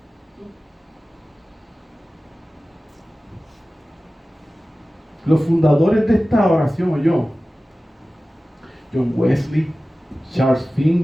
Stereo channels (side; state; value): both; normal; correlation 0.96